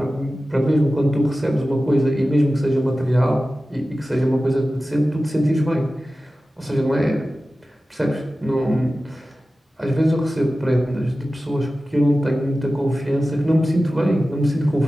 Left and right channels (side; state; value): both; normal; correlation 0.95